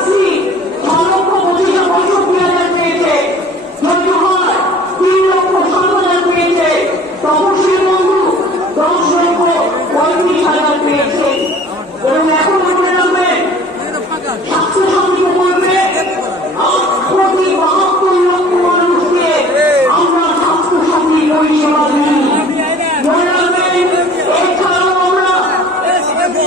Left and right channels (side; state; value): both; normal; correlation 0.48